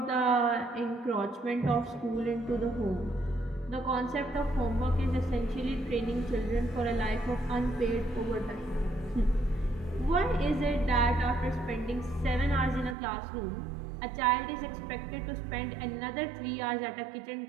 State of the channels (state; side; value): drops out; left; at 13.0 s